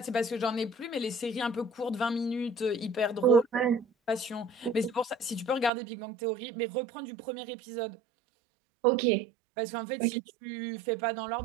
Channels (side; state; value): left; drops out; at 5.7 s